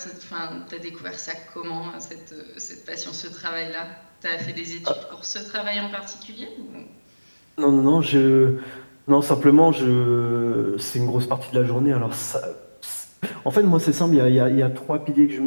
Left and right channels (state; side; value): inverted; both; correlation -1.00